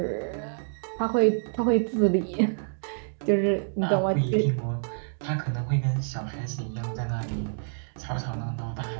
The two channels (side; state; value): left; silent; digital silence